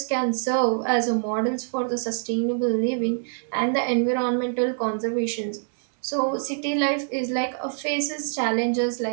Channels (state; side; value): silent; left; digital silence